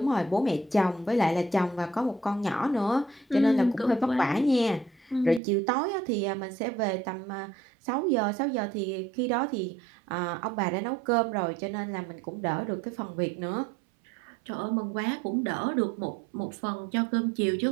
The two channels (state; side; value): drops out; left; at 5.4 s